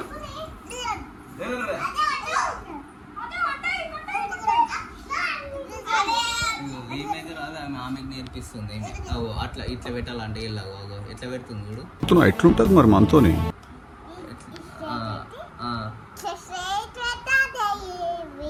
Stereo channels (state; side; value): identical; both; correlation 1.00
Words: ఆమెకు నేర్పిస్తుంది అట్లా ఇట్లా పెట్టాలంటే ఇలాగో ఎట్లా పెడుతుంది చూడు ఎట్లుంటది మరి మనతోని